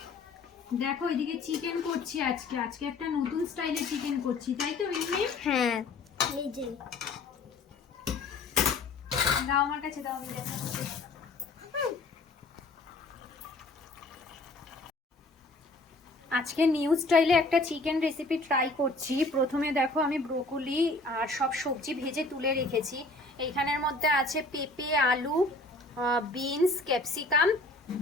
দেখো এদিকে চিকেন করছি আজকে একটা নতুন স্টাইলের চিকেন করছি, তাই তো মিমি? হ্যাঁ এই যে দাও আমার কাছে, দাও আমি দেখাবো। আজকে নিউ স্টাইলে একটা চিকেন রেসিপি ট্রাই করছি। প্রথমে দেখো আমি ব্রোকলি আর সব সবজি ভেজে তুলে রেখেছি। এইখানের মধ্যে আছে পেঁপে, আলু, বিনস, ক্যাপসিকাম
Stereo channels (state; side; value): quieter; right; 3.2 dB